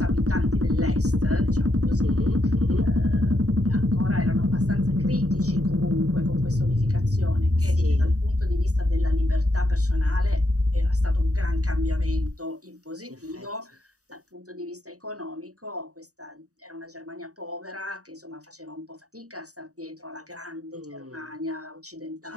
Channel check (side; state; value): left; late; 0.66 ms